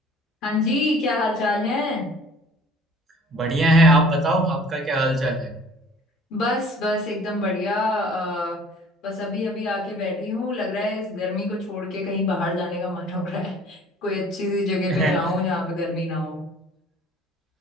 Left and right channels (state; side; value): normal; both; correlation 0.51